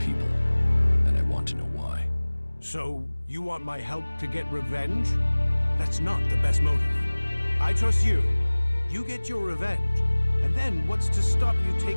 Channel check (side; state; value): both; inverted; correlation -1.00